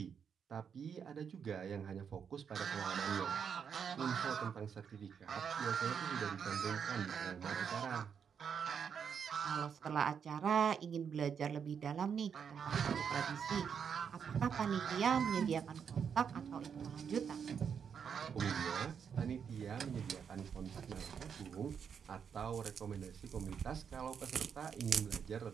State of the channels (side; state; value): left; quieter; 7.1 dB